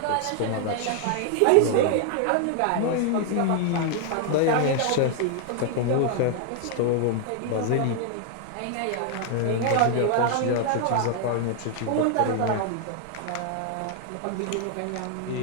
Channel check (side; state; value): both; different; correlation 0.00